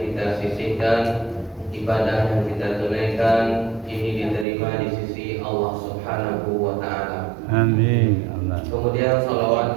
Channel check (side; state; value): left; drops out; at 4.5 s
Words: sisihkan, ibadah yang kita tunaikan ini diterima di sisi Allah Subhanahu wa taala. Amin. Kemudian